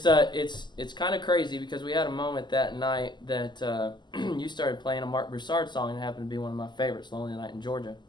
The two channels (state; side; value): late; right; 0.21 ms